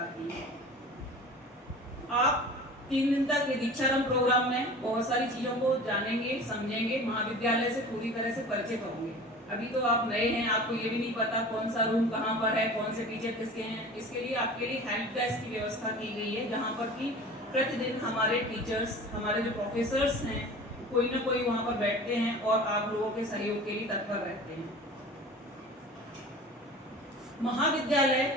है। आप 3 दिन तक ये दीक्षारंभ प्रोग्राम में बहुत सारी चीजों को जानेंगे, समझेंगे, महाविद्यालय से पूरी तरह से परिचित होंगे। अभी तो आप नए हैं, आपको ये भी नहीं पता कौन सा रूम कहाँ पर है, कौन से टीचर किसके हैं। इसके लिए आपके लिए हेल्प डेस्क की व्यवस्था की गई है, जहाँ पर कि प्रतिदिन हमारे टीचर्स, हमारे जो प्रोफेसर्स हैं, कोई ना कोई वहाँ पर बैठते हैं और आप लोगों के सहयोग के लिए तत्पर रहते हैं। महाविद्यालय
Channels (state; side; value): normal; both; correlation 0.39